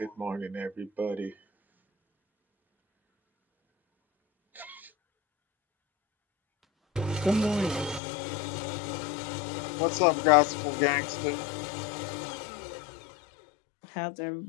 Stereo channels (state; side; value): drops out; right; at 8.0 s